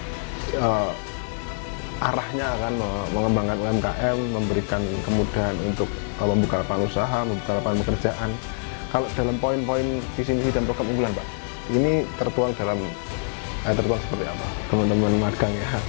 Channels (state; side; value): silent; right; digital silence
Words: arahnya akan mengembangkan UMKM, memberikan kemudahan untuk membuka lapangan usaha, membuka lapangan pekerjaan. Kalau dalam poin-poin visi misi dan program unggulan Pak, ini tertuang seperti apa? Teman-teman magang ya,